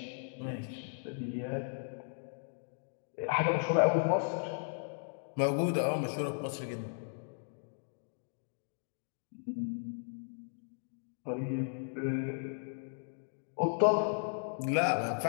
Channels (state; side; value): silent; right; digital silence